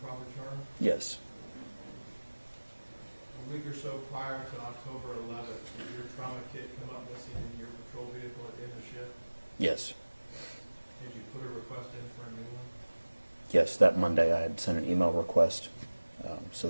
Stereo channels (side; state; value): both; inverted; correlation -1.00